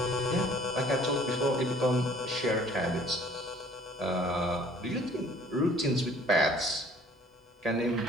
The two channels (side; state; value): both; normal; correlation 0.54